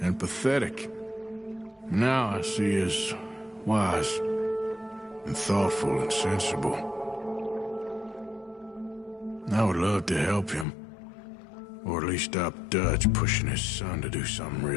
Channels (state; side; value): drops out; right; at 10.7 s